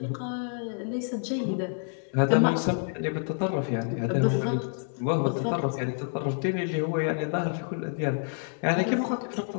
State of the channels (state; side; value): silent; right; 59 dB below the other